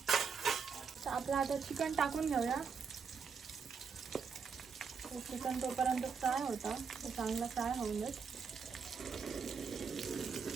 आपलं आता चिकन टाकून घेऊया. चिकन तोपर्यंत फ्राय होता तो चांगला फ्राय होऊन जाईल.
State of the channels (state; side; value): quieter; left; 5.8 dB